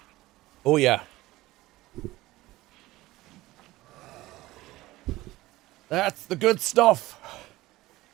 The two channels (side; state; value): left; quieter; 18.0 dB